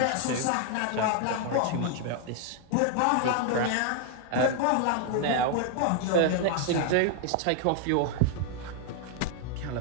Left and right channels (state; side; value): different; both; correlation 0.00